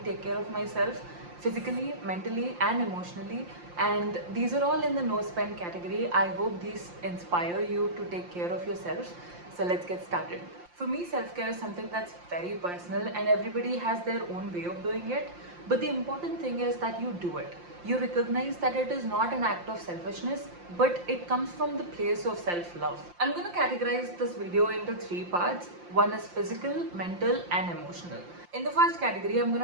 take care of myself physically, mentally, and emotionally. And these are all in the no spend category. I hope these inspire you to take care of yourself. So let's get started. For me, self-care is something that's very personal and everybody has their own way of doing it. But the important thing is that you do it. You recognize that it is not an act of selfishness, but it comes from the place of self-love. I'm going to categorize this video into 3 parts. One is physical, mental, and emotional. In the first category, I'm going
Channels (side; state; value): left; late; 5.7 ms